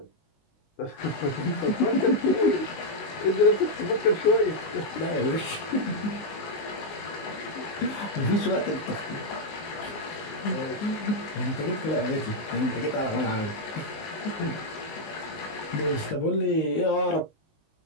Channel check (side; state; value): right; late; 19 ms